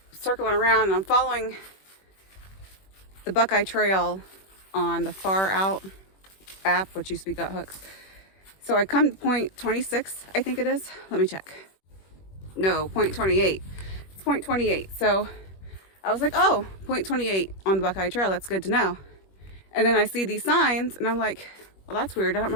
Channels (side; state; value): right; late; 21 ms